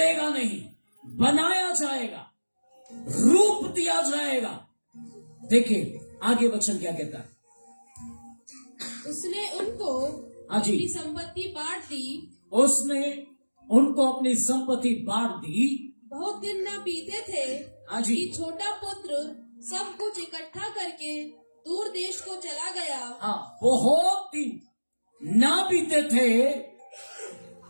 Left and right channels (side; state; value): both; inverted; correlation -1.00